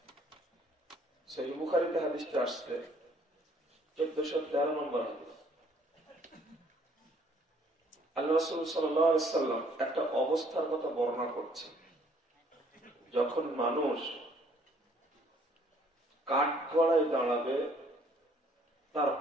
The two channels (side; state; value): both; normal; correlation 0.61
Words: সহিহ বুখারীতে হাদিসটা আসছে, 1413 নম্বর হাদিস। আল্লাহ রাসূল সাল্লাল্লাহু আলাইহি ওয়াসাল্লাম একটা অবস্থার কথা বর্ণনা করছেন, যখন মানুষ কাঠগড়ায় দাঁড়াবে তার